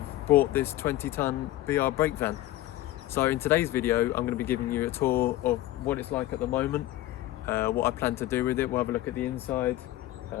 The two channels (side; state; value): right; quieter; 15.4 dB